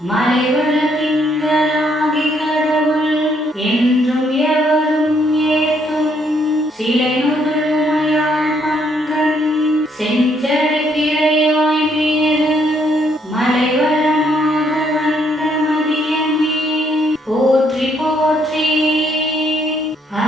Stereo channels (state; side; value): normal; both; correlation 0.71